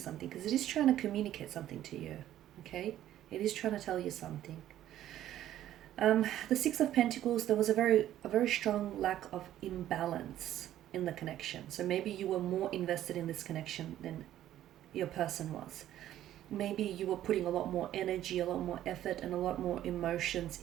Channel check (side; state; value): left; quieter; 12.5 dB